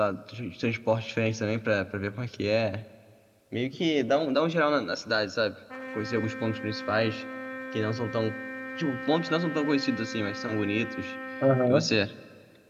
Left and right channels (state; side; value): identical; both; correlation 1.00